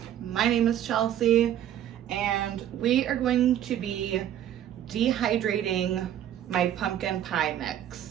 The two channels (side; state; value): left; quieter; 10.9 dB